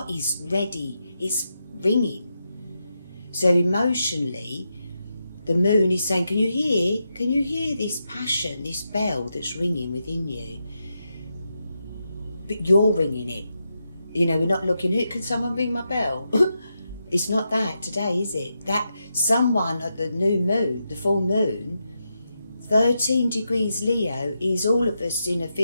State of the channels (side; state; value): both; inverted; correlation -0.86